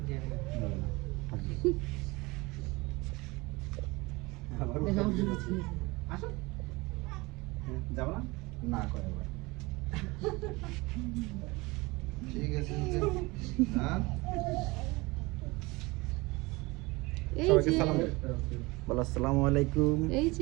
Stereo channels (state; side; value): quieter; left; 23.5 dB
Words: আসো। যাবো না? না করে ভাই। ঠিক আছে। হ্যাঁ? এই সবাইকে যে সালাম দে। বলো আসসালামু আলাইকুম। এই